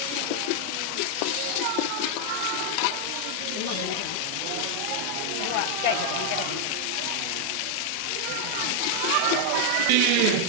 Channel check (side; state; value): both; different; correlation 0.00